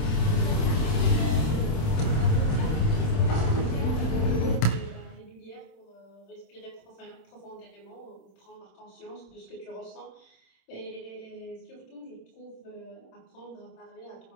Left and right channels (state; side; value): late; right; 27 ms